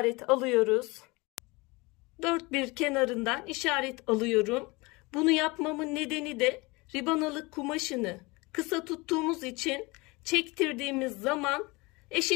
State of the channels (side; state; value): right; quieter; 24.6 dB